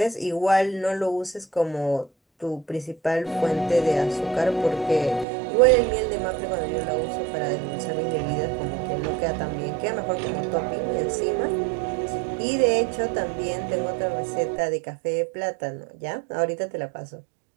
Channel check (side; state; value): left; drops out; at 5.2 s